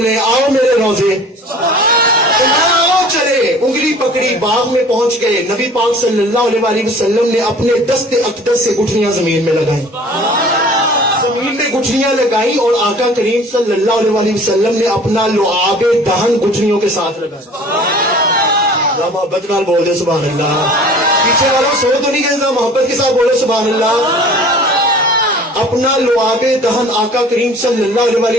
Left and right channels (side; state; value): both; normal; correlation 0.46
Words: آؤ میرے روزے, آؤ چلے, انگلی پکڑی, باغ میں پہنچ گئے. نبی پاک صلی اللہ علیہ وسلم نے اپنے دست اقدس سے گٹھلیاں زمین میں لگائیں, زمین میں گٹھلیاں لگائیں, اور آقا کریم صلی اللہ علیہ وسلم نے اپنا لعاب دہن گٹھلیوں کے ساتھ لگایا. محبت نال بول دے سبحان اللہ. پیچھے والوں سو تو نہیں گئے, محبت کے ساتھ بولے سبحان اللہ. اپنا لعاب دہن آقا کریم صلی اللہ